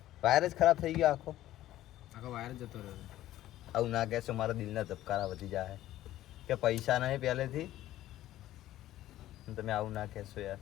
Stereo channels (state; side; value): quieter; right; 14.1 dB